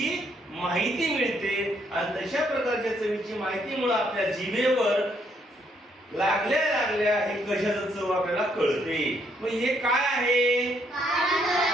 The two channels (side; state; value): both; normal; correlation 0.72